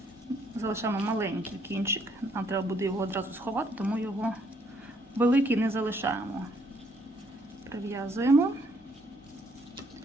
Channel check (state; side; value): normal; both; correlation 0.68